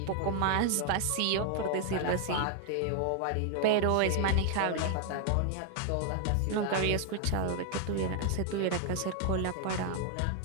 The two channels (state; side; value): different; both; correlation 0.00